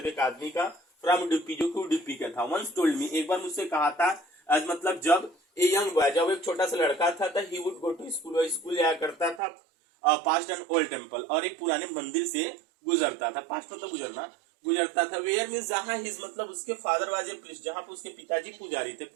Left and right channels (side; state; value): left; drops out; at 9.4 s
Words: एक आदमी का, फ्रॉम उडुपी जो कि उडुपी का था। वंस टोल्ड मी, एक बार मुझसे कहा था, आज मतलब जब ए यंग बॉय, जब एक छोटा सा लड़का था, he would go to school, वह स्कूल जाया करता था, पास्ट एन ओल्ड टेम्पल, और एक पुराने मंदिर से गुजरता था, पास्ट मतलब गुजरना, गुजरता था। वेयर मीन्स जहाँ हिज मतलब उसके फादर वाज ए प्रीस्ट, जहाँ पे उसके पिताजी पुजारी थे।